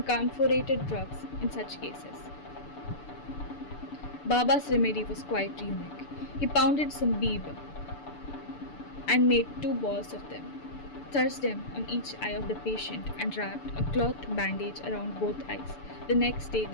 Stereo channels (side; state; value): right; late; 6.9 ms